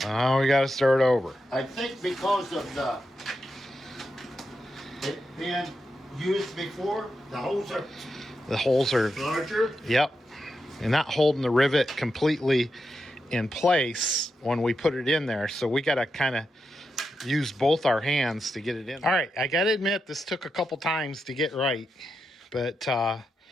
now we got to start over. I think because of it being used before, the holes are larger. Yep. And not holding the rivet completely in place when we put it in there. So we got to kind of use both our hands to get it in. All right. I got to admit, this took a couple times to get right. But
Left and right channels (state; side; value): normal; both; correlation 0.86